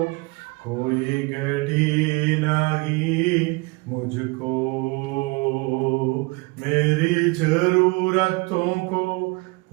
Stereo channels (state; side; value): quieter; left; 26.5 dB